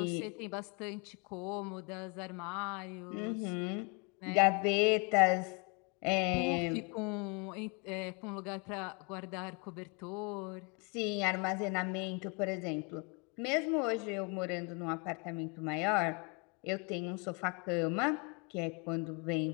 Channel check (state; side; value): quieter; right; 31.9 dB